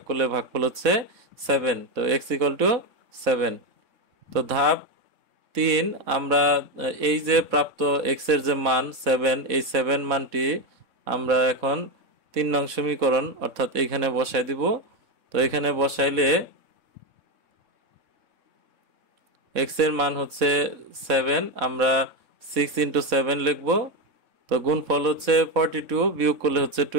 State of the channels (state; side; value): late; left; 4.1 ms